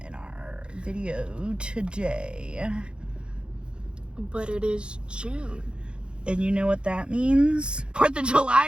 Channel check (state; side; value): late; left; 0.054 ms